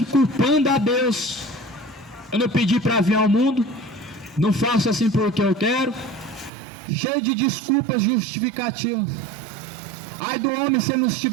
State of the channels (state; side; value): drops out; left; at 6.5 s